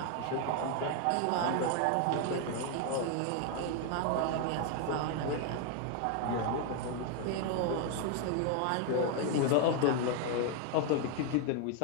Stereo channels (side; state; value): both; different; correlation 0.01